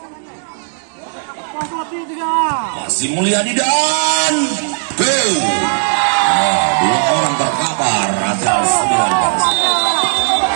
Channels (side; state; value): left; silent; 64 dB below the other